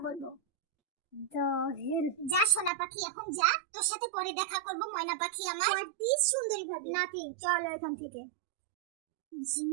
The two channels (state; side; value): drops out; left; at 2.7 s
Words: বলবো। যা সোনা পাখি, এখন যা, তোর সাথে পরে দেখা করবো ময়না পাখি আমার। আর দিস সুন্দরী ভাবি। নাথিং, চলো এখান থেকে।